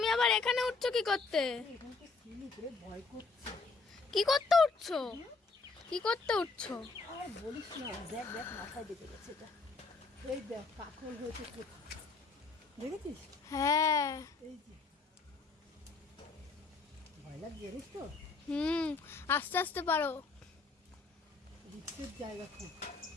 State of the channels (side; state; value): right; quieter; 4.1 dB